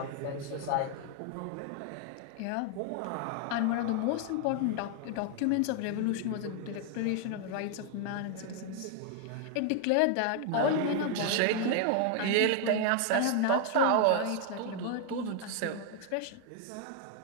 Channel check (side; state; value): both; different; correlation 0.00